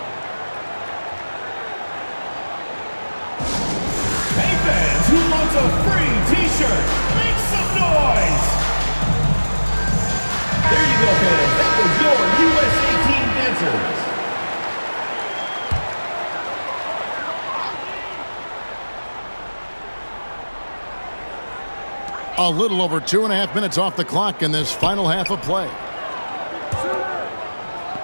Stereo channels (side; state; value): both; inverted; correlation -1.00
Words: fans who want a free t-shirt, make some noise! There you go, fans. That was your USA Team dancers. A little over 2.5 minutes off the clock in this final half of play.